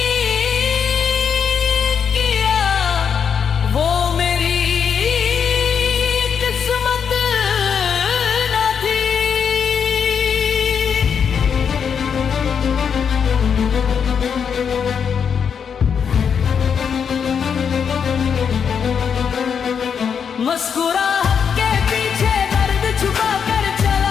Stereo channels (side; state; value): right; quieter; 7.0 dB